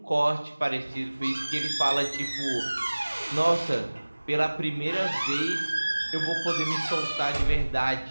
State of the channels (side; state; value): both; inverted; correlation -1.00